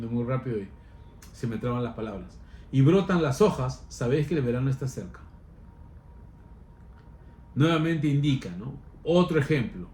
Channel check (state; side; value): identical; both; correlation 1.00